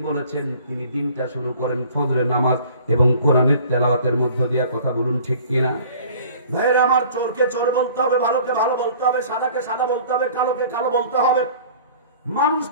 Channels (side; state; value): both; inverted; correlation -0.49